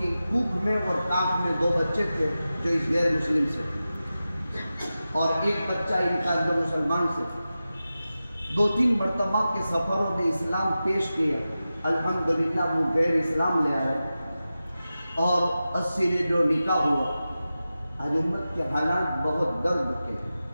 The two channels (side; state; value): both; inverted; correlation -0.94